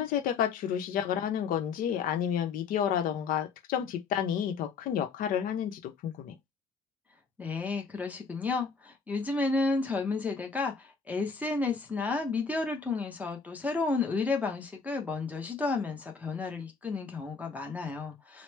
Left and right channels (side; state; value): right; quieter; 5.2 dB